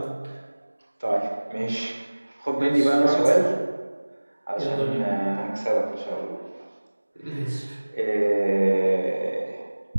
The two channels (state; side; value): inverted; both; correlation -1.00